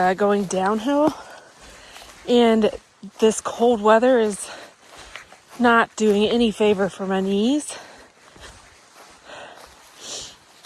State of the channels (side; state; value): both; identical; correlation 1.00